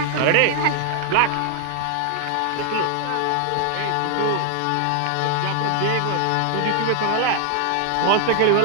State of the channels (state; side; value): different; both; correlation 0.00